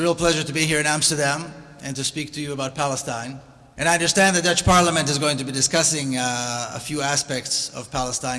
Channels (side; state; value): both; identical; correlation 1.00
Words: real pleasure to be here in Amsterdam and to speak to you about Palestine. And I understand the Dutch Parliament is going to be discussing a few aspects of